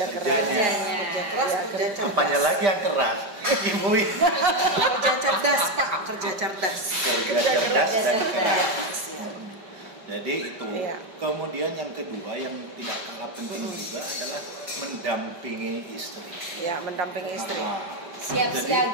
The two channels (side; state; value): left; late; 5.1 ms